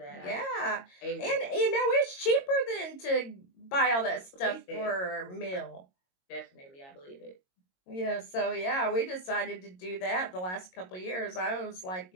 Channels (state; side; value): late; right; 22 ms